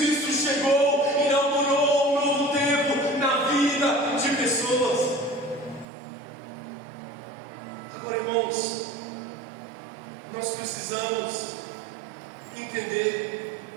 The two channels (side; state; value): left; drops out; at 5.9 s